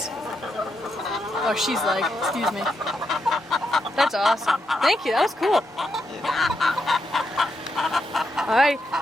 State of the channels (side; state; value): both; normal; correlation 0.82